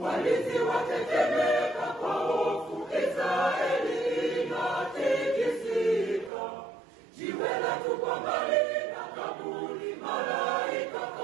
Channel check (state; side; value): drops out; left; at 6.3 s